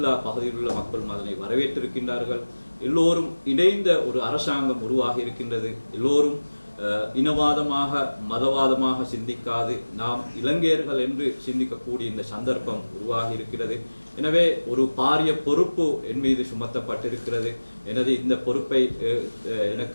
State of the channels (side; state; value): both; inverted; correlation -1.00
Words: பகுதியில் உள்ள மக்களும் அதனை வரவேற்றிருக்கின்றார்கள். எல்லோரும் இணைந்த ஒரு அரசாங்கம் உருவாகி இருக்கின்றது. எல்லோரும் இனவாதமாக மதவாதமாக சிந்திக்காது நாம் இலங்கையர்கள் என்று சிந்திக்கக்கூடிய இந்த சந்தர்ப்பம் உருவாகி இருக்கிறது. எனவே ஒரு பாரிய பொறுப்பு என் மீது சுமத்தப்பட்டிருக்கிறது. எனது இந்த பொறுப்பை